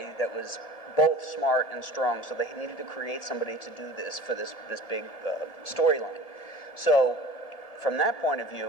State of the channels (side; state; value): right; late; 1.7 ms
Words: that was both smart and strong, so they needed to create somebody to do this for this big storyline. So from that point of